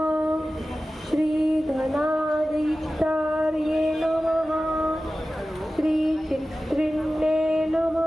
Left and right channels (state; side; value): normal; both; correlation 0.95